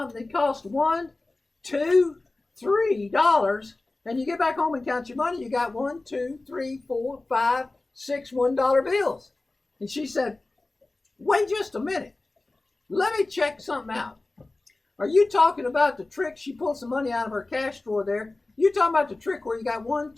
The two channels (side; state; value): right; quieter; 3.1 dB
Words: that costs $1, $2, $3, and you get back home and count your money, you got 1, 2, 3, 4, 5, 6 $1 bills. And she said, wait just a minute. Let me check something out. Are you talking about the trick? She pulled some money out of her cash drawer there. You talking about the trick where you got 1,